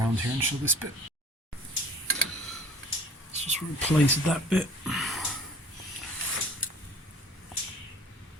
here and show this bit. Let's just replace that bit.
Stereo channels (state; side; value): normal; both; correlation 0.48